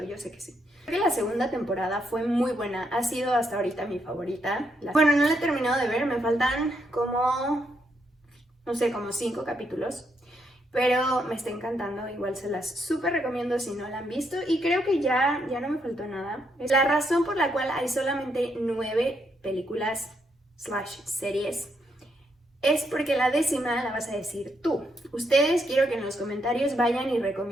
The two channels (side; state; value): both; normal; correlation 0.77